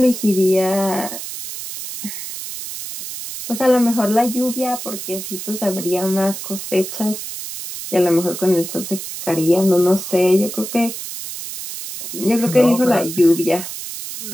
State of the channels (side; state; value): right; noise; hiss, 9 dB below the sound